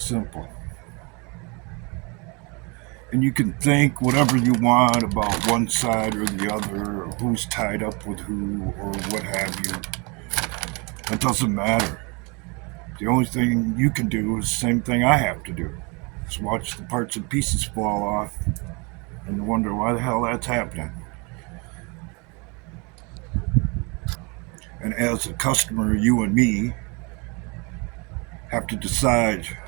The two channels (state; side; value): quieter; left; 30.3 dB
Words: simple. And you can think whatever you want about one side or the other, or who's tied up with who, or what have you. It doesn't matter. The only thing you can do is the same thing I have to do. Just watch the parts and pieces fall off and wonder why the hell that's happening. And as a customer, you and me have to decide